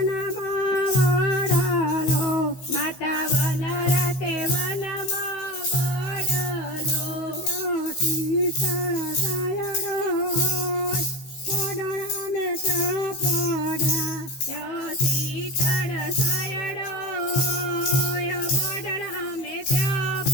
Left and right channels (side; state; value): right; late; 16 ms